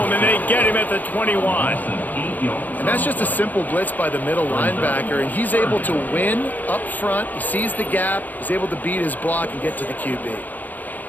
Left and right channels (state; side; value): late; right; 0.083 ms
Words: and they get him at the 21. And that's just a simple blitz by the middle linebacker, and he's able to win up front. He sees the gap. He's able to beat his block and get to the QB.